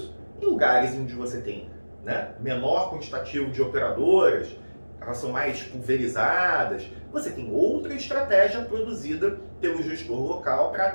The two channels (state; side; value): inverted; both; correlation -1.00